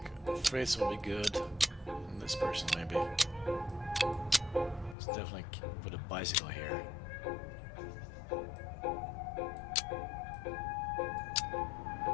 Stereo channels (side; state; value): right; drops out; at 5.0 s